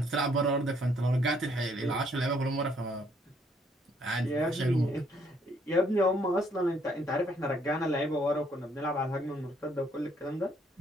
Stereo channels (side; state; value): both; normal; correlation 0.67